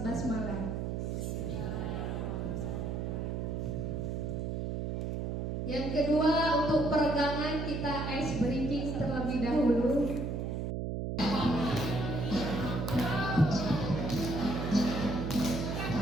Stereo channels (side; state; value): right; noise; hum, 2 dB below the sound